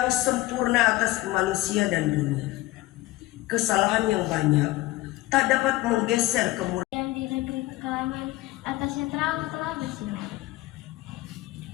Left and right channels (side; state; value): right; quieter; 18.2 dB